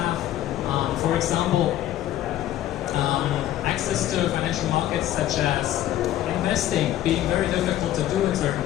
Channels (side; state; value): right; quieter; 13.0 dB